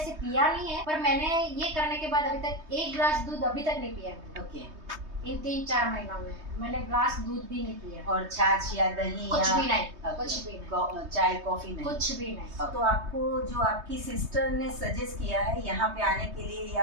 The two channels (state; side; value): late; left; 3.2 ms